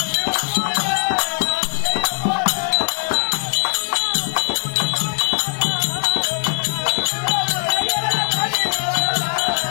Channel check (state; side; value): silent; right; 61 dB below the other